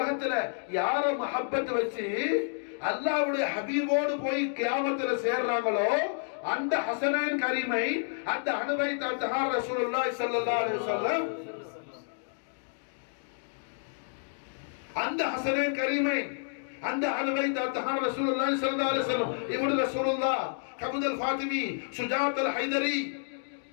யார மஹப்பத் வச்சு அல்லாஹ்வுடைய ஹபீபோடு போய் கியாமத்துல சேர்றாங்களோ அந்த ஹஸனைன் கரீமை, அந்த அஹ்லுபைத் அத்ஹார் ரசூலுல்லாஹி ஸல்லல்லாஹு அலைஹி வஸல்லம், அந்த ஹஸனைன் கரீமை, அந்த அஹ்லுபைத் அத்ஹார் ரசூலுல்லாஹி ஸல்லல்லாஹு அலைஹி வஸல்லம், இப்னு ரசூலுல்லாஹ் கபுத் அல் ஃபாத்திமி, சுஜாத் அல் ஹைதரி,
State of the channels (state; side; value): silent; right; digital silence